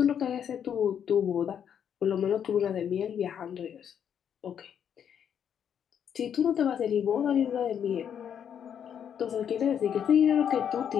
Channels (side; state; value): right; quieter; 8.5 dB